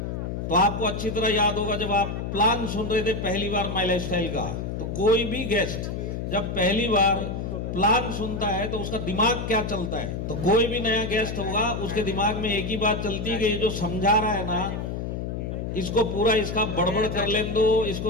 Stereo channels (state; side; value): noise; left; hum, 4 dB below the sound